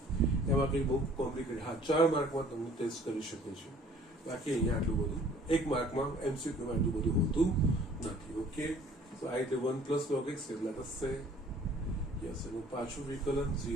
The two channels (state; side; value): normal; both; correlation 0.54